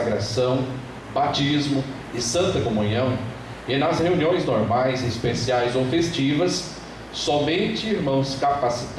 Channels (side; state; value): both; identical; correlation 1.00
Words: batismo e santa comunhão, e nas reuniões normais, especiais ou festivas, somente irmãos